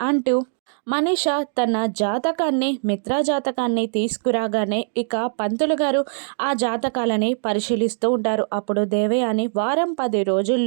అంటూ మనీష తన జాతకాన్ని మిత్రా జాతకాన్ని తీసుకురాగానే ఇక పంతులు గారు ఆ జాతకాలని పరిశీలిస్తూ ఉంటారు. అప్పుడు దేవయాని వారం 10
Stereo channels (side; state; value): left; silent; digital silence